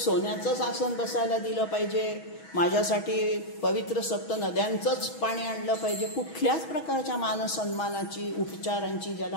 आसन बसायला दिलं पाहिजे, माझ्यासाठी पवित्र सप्त नद्यांचंच पाणी आणलं पाहिजे, कुठल्याच प्रकारच्या मानसन्मानाची उपचारांची ज्याला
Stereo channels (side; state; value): right; late; 6.2 ms